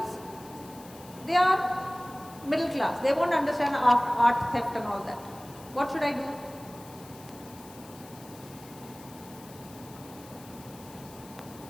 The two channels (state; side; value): noise; left; hiss, 20 dB below the sound